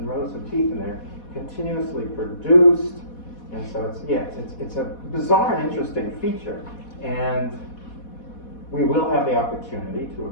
rows of teeth, and they're continuously produced. And so it's a bizarre and interesting feature. And we will have the opportunity to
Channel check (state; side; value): late; right; 4.1 ms